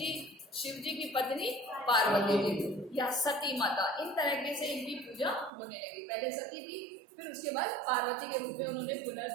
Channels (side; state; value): left; drops out; at 5.5 s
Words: शिव जी की पत्नी पार्वती जी या सती माता, इन तरीके से इनकी पूजा होने लगी। पहले सती थी, फिर उसके बाद पार्वती के रूप में उन्होंने